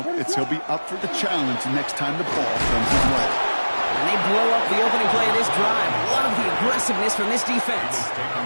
it's he'll be up for the challenge next time the ball comes his way. And they blow up the opening play of this drive. Love the aggressiveness from this defense.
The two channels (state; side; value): inverted; both; correlation -1.00